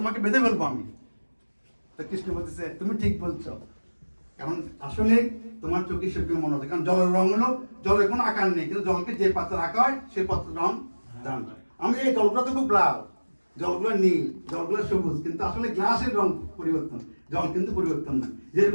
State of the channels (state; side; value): inverted; both; correlation -1.00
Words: বেঁধে ফেলবো আমি। তো কৃষ্ণ বলতেছে তুমি ঠিক বলছো, কারণ আসলে তোমার চোখে সেরকম মনে হচ্ছে, কারণ জলের রং হলো, জলের কোনো আকার নেই, কিন্তু জলকে যে পাত্রে রাখা হয় সেই পাত্রের রং দান হয়। আমি এই জলগুলো তো খুব লাল, জলগুলো নীল, জলগুলো সবুজ, কিন্তু আসলে গ্লাসের রং পরিবর্তন, জল কিন্তু পরিবর্তন না।